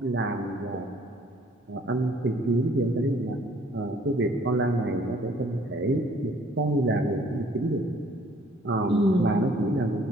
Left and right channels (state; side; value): normal; both; correlation 0.59